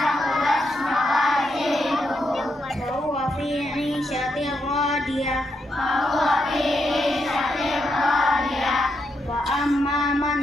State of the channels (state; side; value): normal; both; correlation 0.81